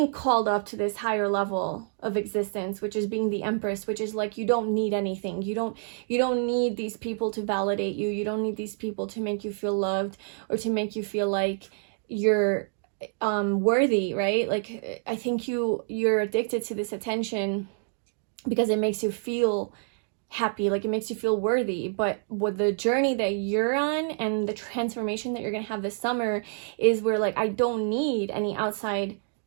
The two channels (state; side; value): silent; left; digital silence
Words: called up to this higher level of existence, which is being the Empress, which is like, you don't need anything. You don't need these people to validate you. You don't need these people to make you feel loved or to make you feel like you're worthy, right? Like, I think you're addicted to this attention because it makes you feel happy, like it makes you feel worthy. But with the journey that you're on and the transformation that you're going to have this summer is where like, I don't need any outside